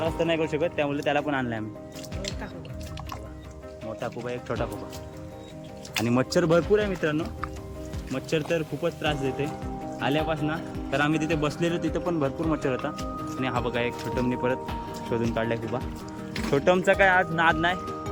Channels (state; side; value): identical; both; correlation 1.00